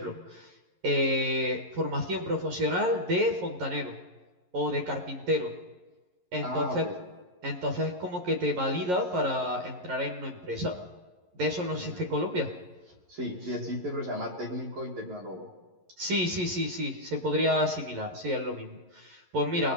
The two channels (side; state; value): left; late; 11 ms